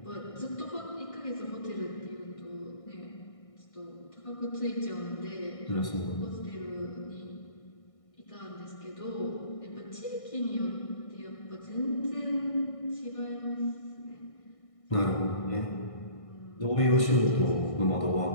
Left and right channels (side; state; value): right; late; 1.6 ms